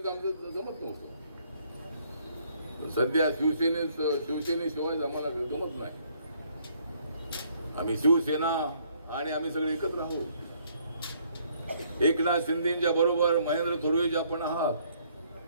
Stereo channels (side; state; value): both; inverted; correlation -0.66